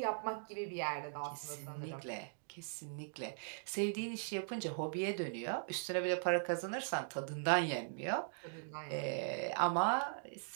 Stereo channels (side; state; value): left; silent; digital silence